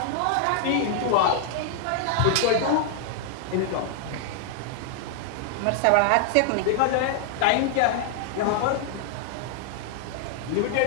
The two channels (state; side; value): different; both; correlation 0.00